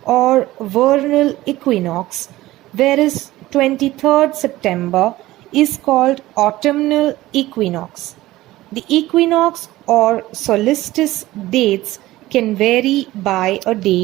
or vernal equinox, whereas 23rd September is called autumnal equinox. The equinox or solstice dates can vary by a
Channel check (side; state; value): left; quieter; 17.0 dB